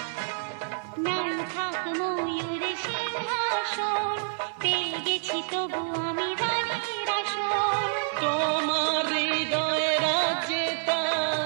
নাই থাক ময়ূর সিংহাসন, পেয়ে গেছি তবু আমি রানীর আসন। তোমার হৃদয়ে রাজ্যে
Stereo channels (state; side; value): silent; left; digital silence